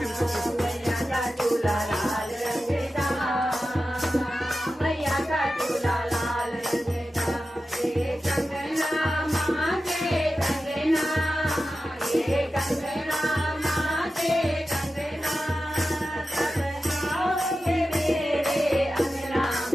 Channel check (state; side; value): normal; both; correlation 0.93